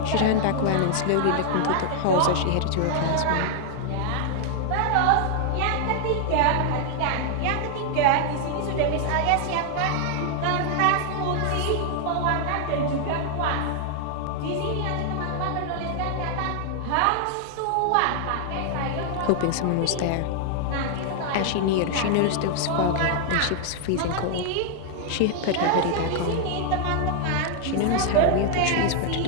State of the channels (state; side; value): different; both; correlation 0.00